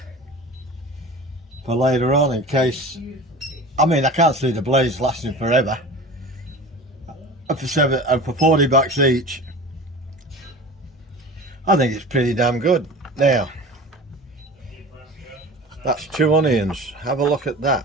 for later on in case. I mean, I can't see the blades lasting forever. And for $40 each, I think it's pretty damn good. Now, that's 2 onions. Have a look at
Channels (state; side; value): normal; both; correlation 0.36